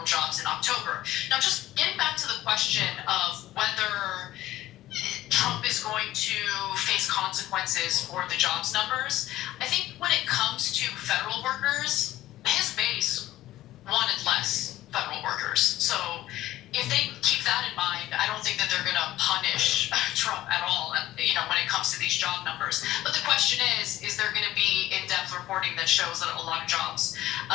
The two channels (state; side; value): quieter; right; 15.0 dB